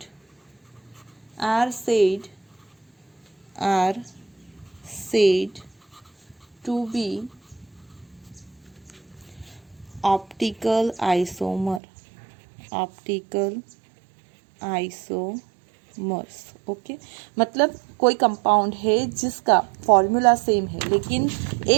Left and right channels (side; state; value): left; drops out; at 11.8 s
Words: are said to be optical isomers. Okay, मतलब कोई compound है जिसका formula same है, लेकिन